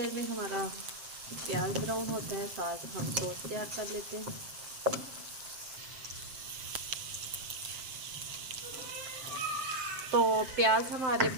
में हमारा प्याज ब्राउन होता है, साथ हम सॉस तैयार कर लेते हैं। तो प्याज हमारे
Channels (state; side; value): late; left; 7.6 ms